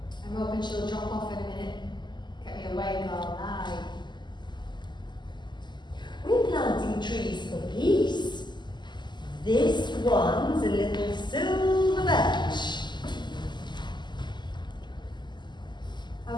I'm hoping she'll drop off in a minute. Get me awake all night. We're planting trees for peace. This one's a little silver birch.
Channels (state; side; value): late; right; 0.21 ms